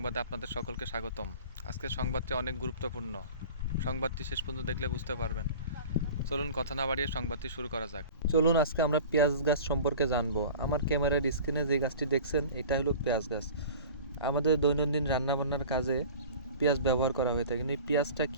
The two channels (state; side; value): inverted; both; correlation -0.40